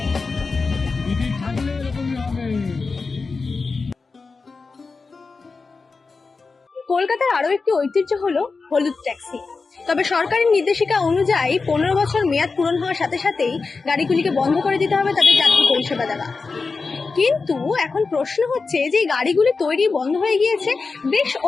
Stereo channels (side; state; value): right; quieter; 4.3 dB